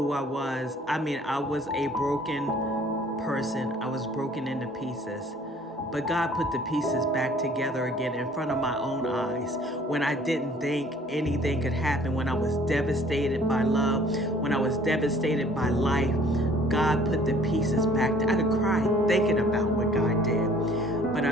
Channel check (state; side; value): normal; both; correlation 0.55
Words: I was. I mean, I was a broken person. I was broken into pieces. But God put the pieces back together again in front of my own eyes when I didn't think anything could happen, when I was devastated by love, when I was devastated by life. God put the pieces back. I could cry thinking about what God did. But